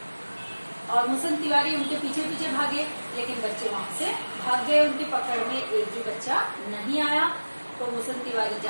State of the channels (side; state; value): both; inverted; correlation -1.00